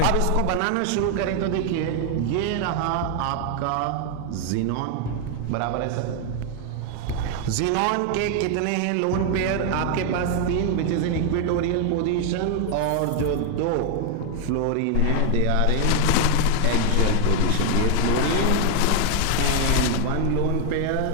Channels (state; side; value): different; both; correlation 0.00